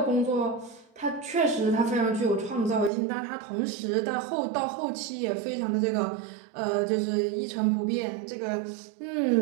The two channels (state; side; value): drops out; left; at 2.9 s